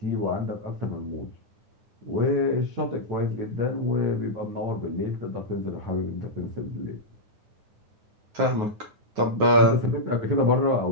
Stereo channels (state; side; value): late; left; 9.5 ms